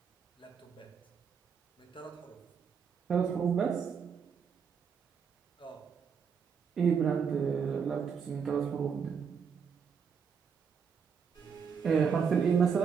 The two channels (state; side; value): quieter; left; 6.5 dB